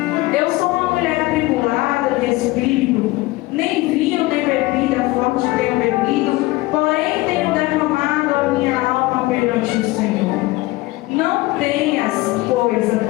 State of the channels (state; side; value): quieter; right; 20.0 dB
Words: eu sou uma mulher atribulada de espírito, nem vinho nem bebida forte tenho bebido, porém tenho derramado a minha alma perante o Senhor. Não tenhas, pois, a